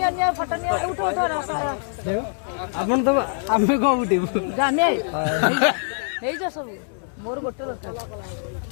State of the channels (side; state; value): right; silent; 63 dB below the other